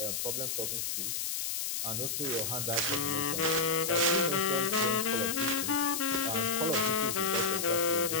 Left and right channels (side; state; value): left; noise; hiss, 1 dB below the sound